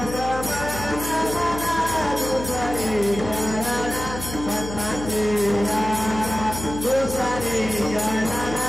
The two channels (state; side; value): noise; left; hum, 9 dB below the sound